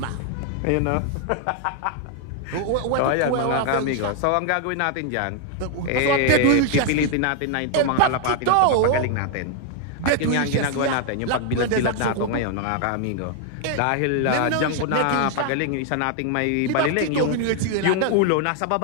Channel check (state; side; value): different; both; correlation 0.00